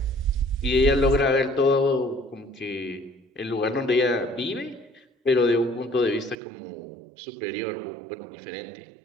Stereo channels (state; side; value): drops out; left; at 6.4 s